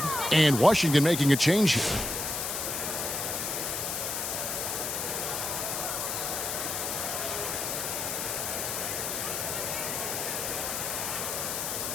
And Washington making a change here.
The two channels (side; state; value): left; noise; hiss, 2 dB below the sound